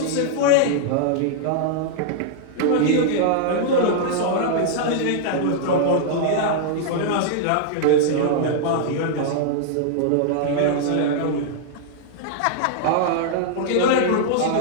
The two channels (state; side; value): different; both; correlation -0.01